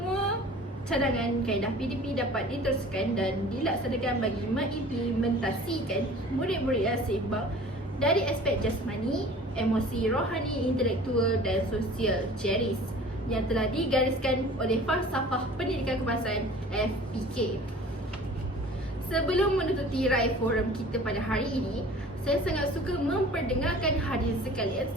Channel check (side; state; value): both; normal; correlation 0.45